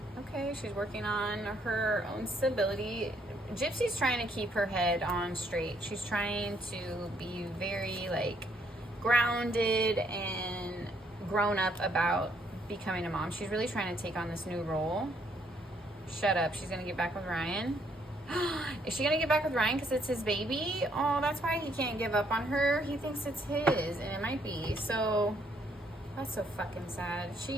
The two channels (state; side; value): normal; both; correlation 0.69